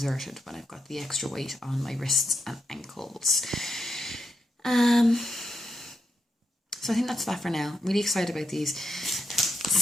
when I've got the extra weight on my wrists and ankles. So I think that's that for now. I'm really excited about these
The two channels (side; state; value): both; normal; correlation 0.82